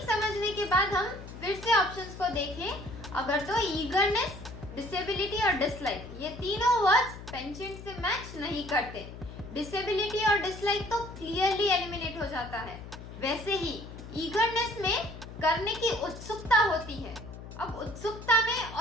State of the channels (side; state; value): left; noise; hum, 13 dB below the sound